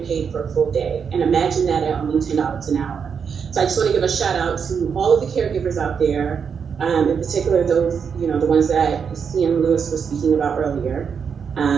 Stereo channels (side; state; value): left; quieter; 6.6 dB